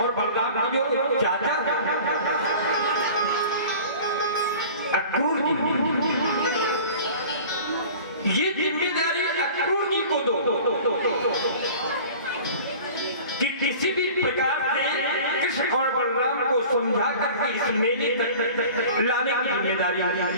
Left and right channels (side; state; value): both; inverted; correlation -0.42